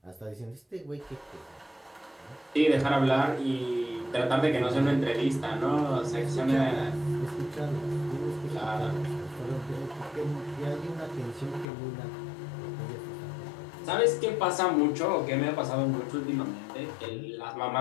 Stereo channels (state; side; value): drops out; right; at 11.7 s